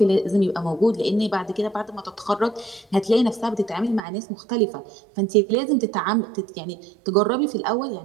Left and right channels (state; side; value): drops out; left; at 4.0 s